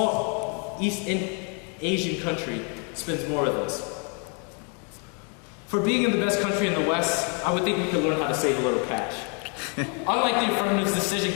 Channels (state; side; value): quieter; right; 37.6 dB